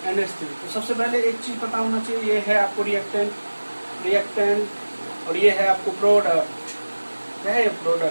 तो सबसे पहले एक चीज पता होना चाहिए, ये है आपको रिएक्टेंट और ये है आपको प्रोडक्ट। क्या है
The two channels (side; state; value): both; inverted; correlation -1.00